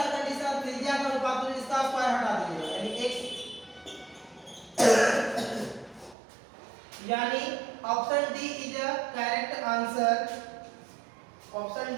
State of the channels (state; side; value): drops out; left; at 6.2 s